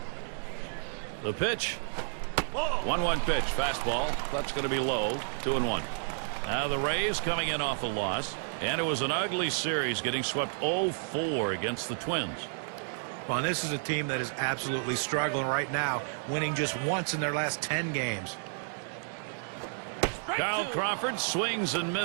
The pitch. 1-1 pitch. Fastball. That's going to be low. 2-1. Now the Rays coming in off a loss. And it was an ugly series, getting swept 0-4 against the Twins. Well, this is a team that is absolutely struggling right now, winning just once in their last 10 games. Kyle Crawford swings and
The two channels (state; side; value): silent; left; digital silence